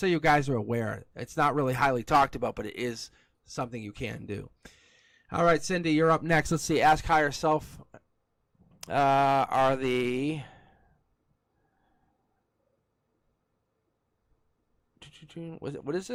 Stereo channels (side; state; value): both; identical; correlation 1.00